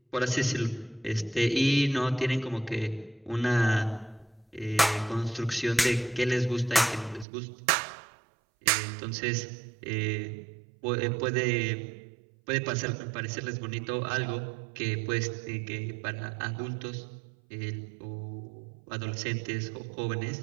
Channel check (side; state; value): left; drops out; at 7.2 s